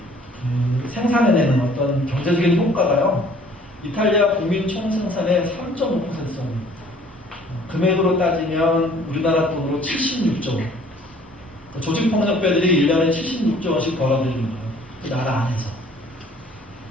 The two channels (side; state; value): both; normal; correlation 0.56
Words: 생산해내는 어떤 경제적인 효과가요, 이탈리아 국민 총생산의 3.5%입니다. 금액으로 따지면 우리나라 돈으로 76조 원. 조직폭력배들이 1년에 76조 원씩 벌어들이는 거예요. 그 나라 안에서.